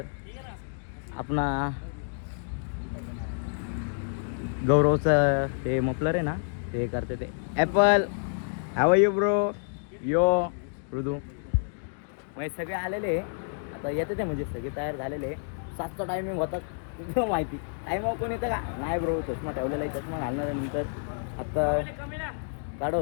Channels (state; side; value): silent; right; digital silence